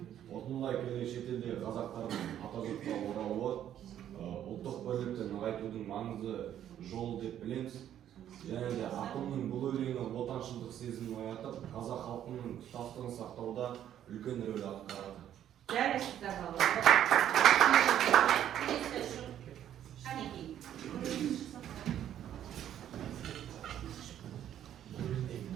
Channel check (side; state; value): left; quieter; 10.7 dB